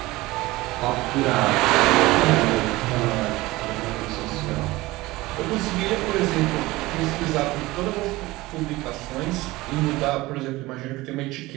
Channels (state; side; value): quieter; left; 19.7 dB